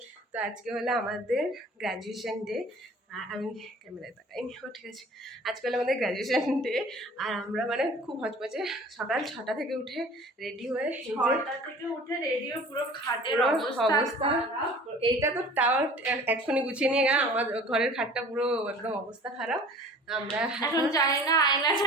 তো আজকে হলো আমাদের গ্র্যাজুয়েশন ডে। আমি ক্যামেরায় তাকাইনি, ঠিক আছে। আজকে হলো আমাদের গ্র্যাজুয়েশন ডে, আর আমরা মানে খুব হচপচে সকাল 6টা থেকে উঠে রেডি হয়ে, 6টা থেকে উঠে রেডি হয়ে পুরো খাটের অবস্থা। এইটা তো তাও এক্ষুনি গুছিয়ে নিয়ে গেলাম, আমার ঘরের খাটটা পুরো একদম অবস্থা খারাপ। আমরা এখন জানি না আয়না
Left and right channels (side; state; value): both; normal; correlation 0.45